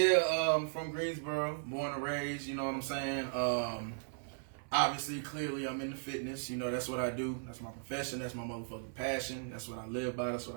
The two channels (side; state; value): left; silent; 53 dB below the other